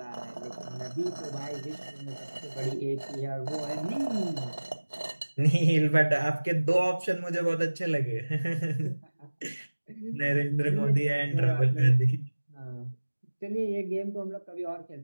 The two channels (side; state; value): both; inverted; correlation -1.00